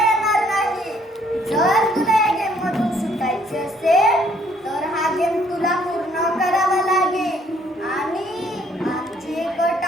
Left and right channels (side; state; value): both; normal; correlation 0.64